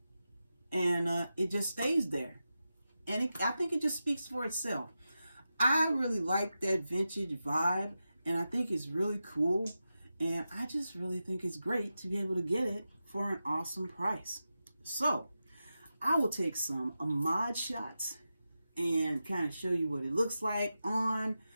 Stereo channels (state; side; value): inverted; both; correlation -0.91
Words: And it just stays there. And I think it just speaks for itself. I really like that vintage vibe, and I think it's really cool. And I just really think it's great to be able to get it for an awesome price. So I will take some mod shots and kind of show you what it looks like on,